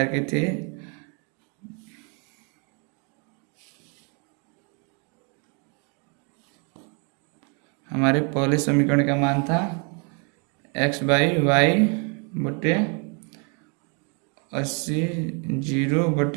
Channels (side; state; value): left; quieter; 35.8 dB